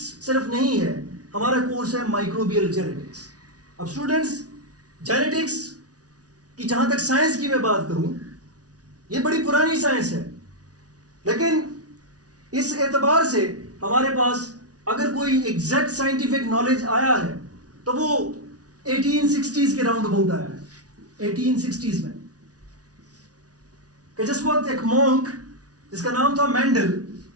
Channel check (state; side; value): late; left; 0.68 ms